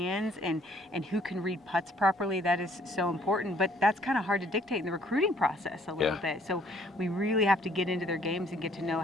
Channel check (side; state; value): both; normal; correlation 0.61